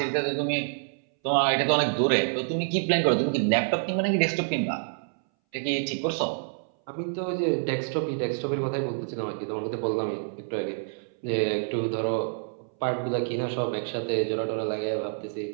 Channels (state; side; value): silent; left; 60 dB below the other